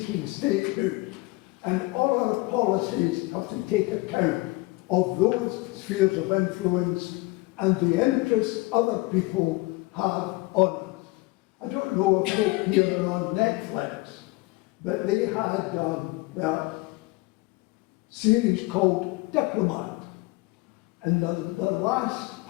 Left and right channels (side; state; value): right; quieter; 22.5 dB